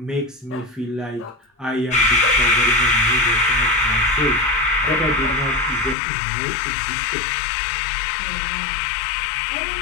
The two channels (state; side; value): drops out; right; at 6.0 s